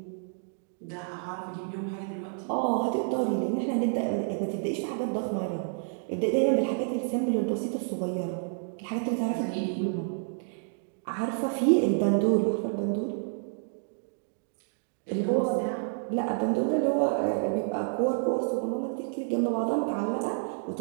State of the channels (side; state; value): left; silent; 58 dB below the other